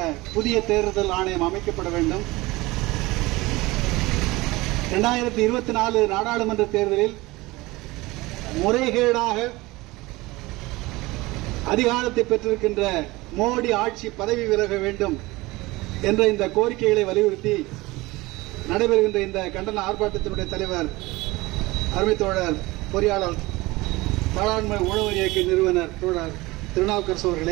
புதிய தேர்தல் ஆணையம் அமைக்கப்பட வேண்டும். 2024 நாடாளுமன்ற தேர்தலில் முறைகேடாக அதிகாரத்தை பெற்றிருக்கின்ற மோடி ஆட்சி பதவி விலக வேண்டும் என்ற இந்த கோரிக்கைகளை வலியுறுத்தி நடைபெறுகின்ற இந்த கண்டன ஆர்ப்பாட்டத்தினுடைய தலைவர் அருமை தோழர் பொறியாளர் பாராளுமன்ற உழவர் இயக்க நிறுவனர் தோழர் திருநாவுக்கரசு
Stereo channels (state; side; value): quieter; left; 21.0 dB